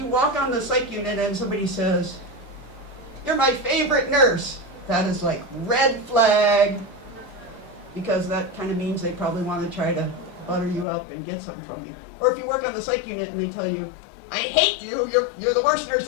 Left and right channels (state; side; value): drops out; right; at 10.9 s